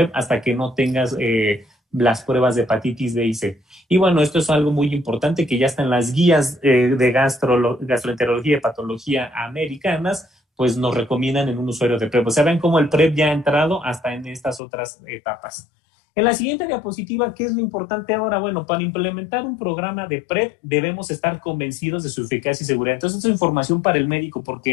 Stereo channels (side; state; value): right; drops out; at 14.6 s